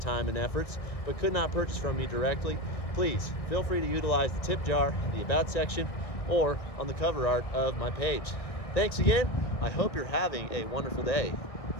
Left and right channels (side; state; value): right; late; 1.6 ms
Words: and efforts but could not purchase from me directly, please feel free to utilize the tip jar in the About section or on the cover art of my page. Thanks again. I hope you're having a wonderful day.